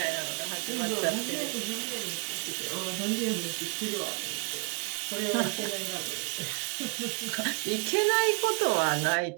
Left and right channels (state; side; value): quieter; left; 33.0 dB